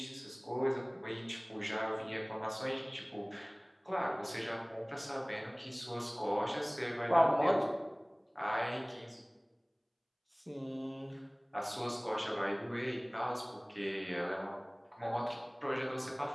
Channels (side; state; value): both; identical; correlation 1.00